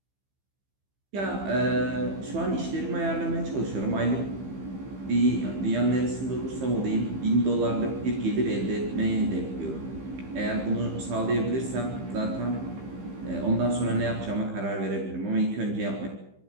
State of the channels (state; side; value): late; left; 15 ms